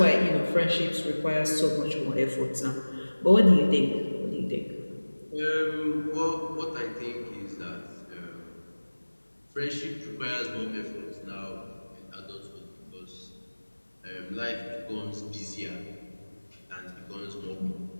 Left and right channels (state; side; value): inverted; both; correlation -1.00